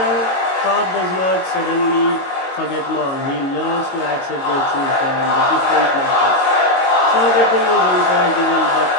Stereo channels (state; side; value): late; right; 22 ms